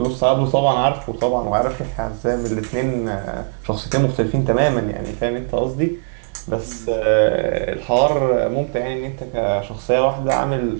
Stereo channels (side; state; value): left; silent; digital silence